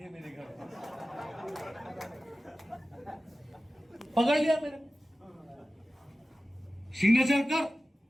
मेरे घर। पकड़ लिया मेरे, सिग्नेचर कर,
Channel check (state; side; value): normal; both; correlation 0.95